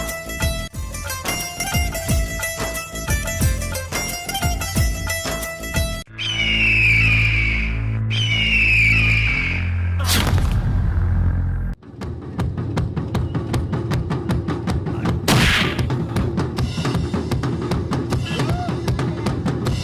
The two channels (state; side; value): identical; both; correlation 1.00